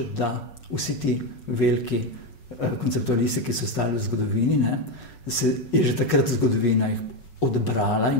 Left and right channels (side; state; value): right; late; 5.4 ms